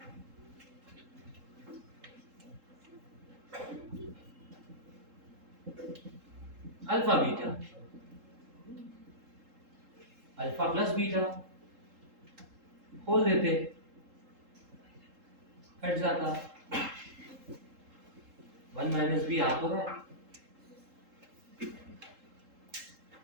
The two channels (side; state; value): left; late; 3.7 ms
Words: alpha beta alpha plus beta खोल देते कट जाता 1 माइनस बी आ तो रहा है